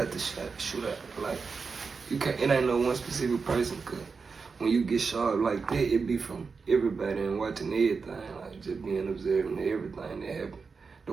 to shoot at. Like you can't. It ain't no one specific person. Cause when you get shot like that, it be from everybody and watching everything. Like just being observing everything that happen, the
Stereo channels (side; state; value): left; quieter; 5.0 dB